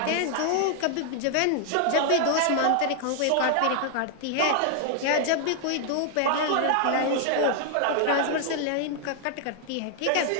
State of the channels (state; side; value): different; both; correlation 0.00